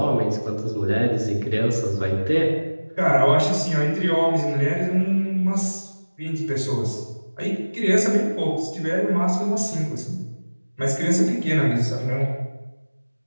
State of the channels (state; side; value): inverted; both; correlation -1.00